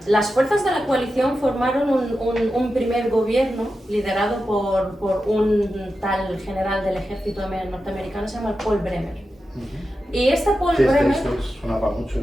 las fuerzas de la coalición formaron un primer gobierno liderado por un tal general del ejército norteamericano, se llama Paul Bremer. Y este Paul Bremer... sonaba mucho.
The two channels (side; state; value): both; normal; correlation 0.91